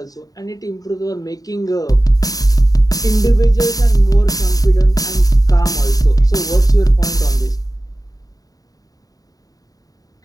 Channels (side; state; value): right; late; 0.18 ms